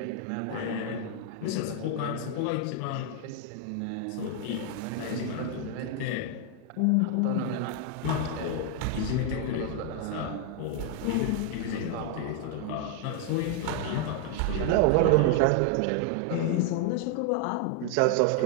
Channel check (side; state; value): both; different; correlation 0.00